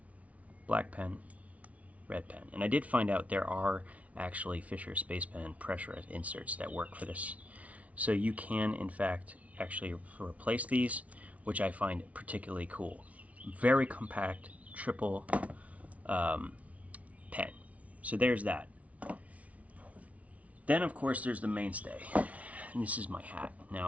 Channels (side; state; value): left; late; 0.067 ms